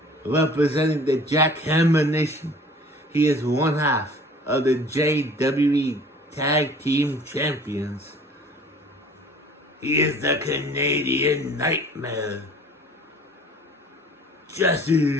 representing the Jackhammer Nation, he is one half of the JWE Tag Team Champions. He is the Canadian Nightmare,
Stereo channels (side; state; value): both; normal; correlation 0.48